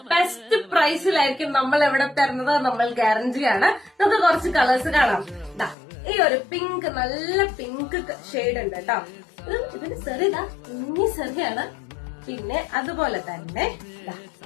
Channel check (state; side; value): drops out; right; at 5.8 s